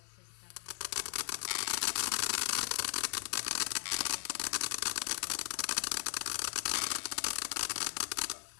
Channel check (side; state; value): right; silent; 53 dB below the other